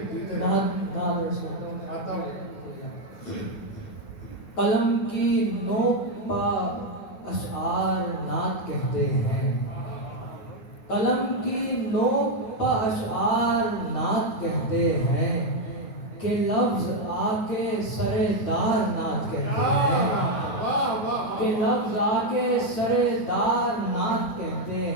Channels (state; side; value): late; right; 9.5 ms